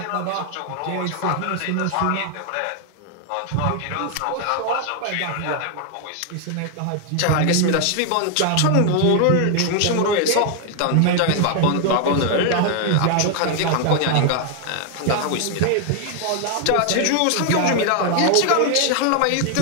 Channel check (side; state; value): both; different; correlation 0.00